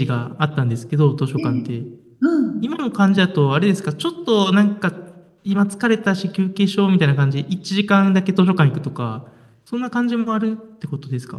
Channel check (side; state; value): both; identical; correlation 1.00